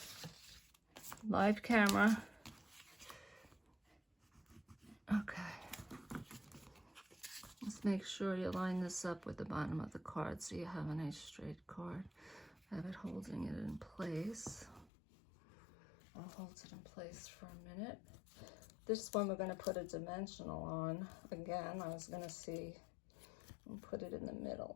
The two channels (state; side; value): drops out; right; at 14.9 s